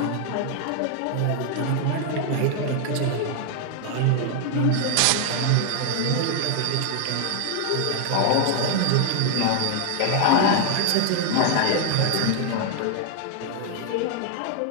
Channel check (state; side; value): different; both; correlation 0.00